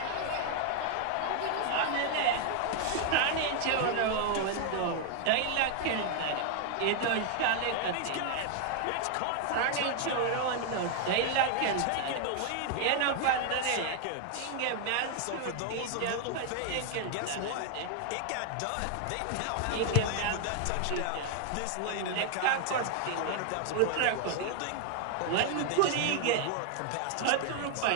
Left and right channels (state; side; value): different; both; correlation 0.00